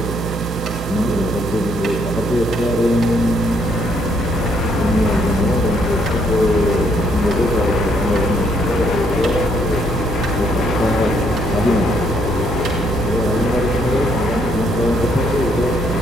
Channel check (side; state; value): both; normal; correlation 0.70